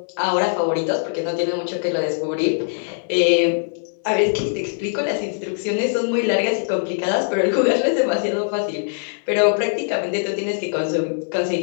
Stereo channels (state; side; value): silent; right; digital silence